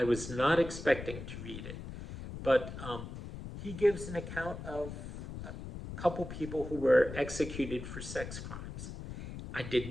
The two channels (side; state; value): left; noise; rumble, 9 dB below the sound